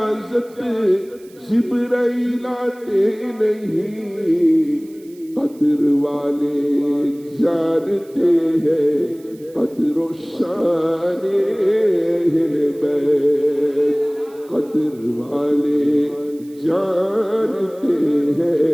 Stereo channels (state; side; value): noise; right; hiss, 28 dB below the sound